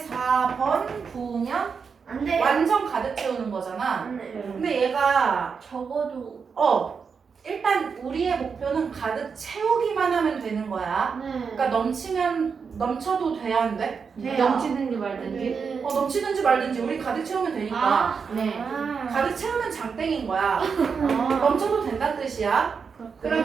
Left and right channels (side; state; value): left; quieter; 5.8 dB